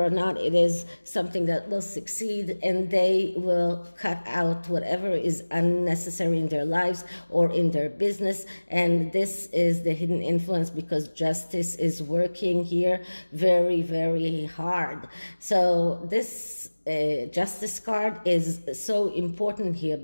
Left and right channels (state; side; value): inverted; both; correlation -1.00